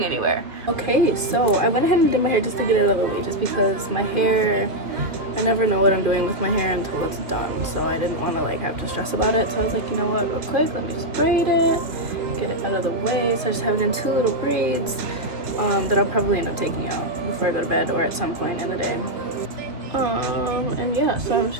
anywhere. Okay, so I went ahead and did my hair just to get it out of the way, just because my hair, I never know what I'm doing with my hair until it's done, so I didn't want to have to stress about it. So I was like, you know what, real quick, let me just braid it, get it out of the way. So I just have it in two little braids that I'll probably end up taking out before I go to bed or at some point in the day. And yeah, so I'm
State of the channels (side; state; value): left; late; 2.7 ms